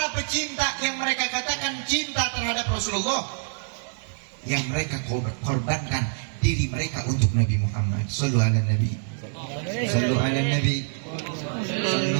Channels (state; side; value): silent; left; 61 dB below the other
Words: pecinta yang mereka katakan cinta terhadap Rasulullah, yang mereka korbankan diri mereka untuk Nabi Muhammad. Sallu ala Nabi, sallu ala Nabi,